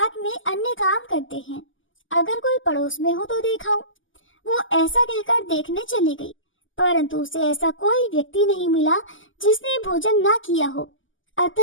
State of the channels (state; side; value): late; right; 0.57 ms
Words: में अन्य काम करते हैं। अगर कोई पड़ोस में हो तो दिखाऊं। वो ऐसा कहकर देखने चली गई, परंतु उसे ऐसा कोई व्यक्ति नहीं मिला जिसने भोजन ना किया हो।